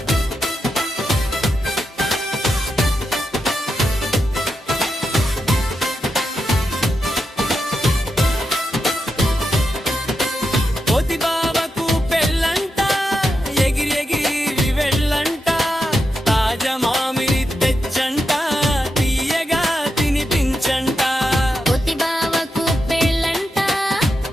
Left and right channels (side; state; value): both; normal; correlation 0.86